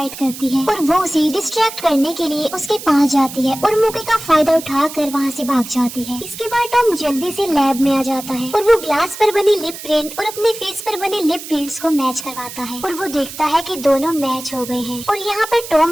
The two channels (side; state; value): right; noise; hiss, 12 dB below the sound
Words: करती है और वो उसे डिस्ट्रैक्ट करने के लिए उसके पास जाती है और मौके का फायदा उठाकर वहाँ से भाग जाती है। इसके बाद टॉम जल्दी से लैब में आ जाता है और वो ग्लास पर बनी लिप प्रिंट और अपने फेस पर बने लिप प्रिंट्स को मैच करवाता है और वो देखता है कि दोनों मैच हो गए हैं। और यहाँ पर